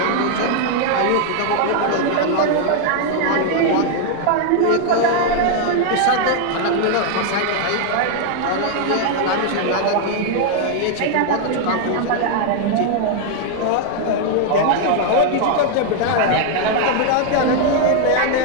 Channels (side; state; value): both; different; correlation 0.00